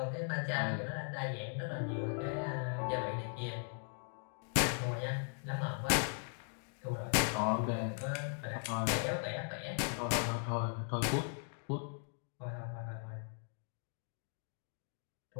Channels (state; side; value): silent; right; 52 dB below the other